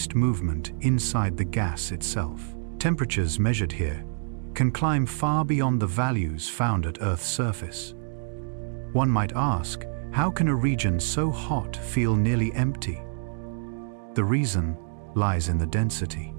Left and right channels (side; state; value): left; silent; digital silence